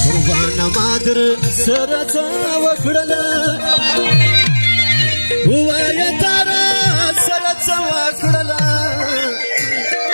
قربان مادر سره څه وکړله وایه تاره سره څه وکړله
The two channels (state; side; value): inverted; both; correlation -1.00